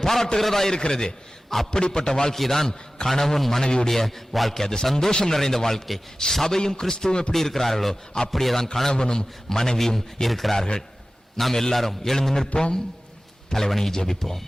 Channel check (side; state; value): both; normal; correlation 0.96